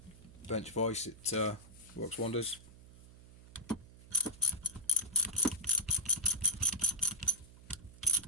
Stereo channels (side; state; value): right; noise; hum, 20 dB below the sound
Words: bench vise, it works wonders.